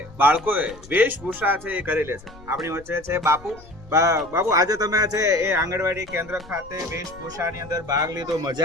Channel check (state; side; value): noise; left; rumble, 21 dB below the sound